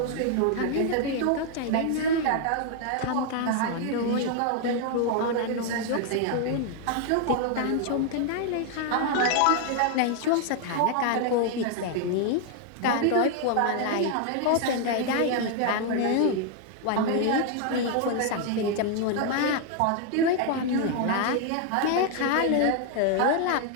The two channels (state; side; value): different; both; correlation 0.00